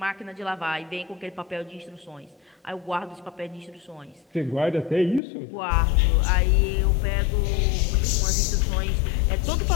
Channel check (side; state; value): right; drops out; at 5.2 s